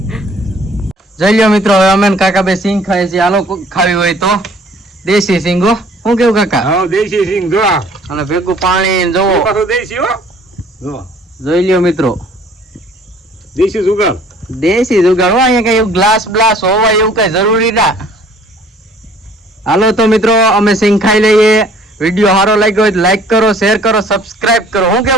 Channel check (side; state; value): both; normal; correlation 0.55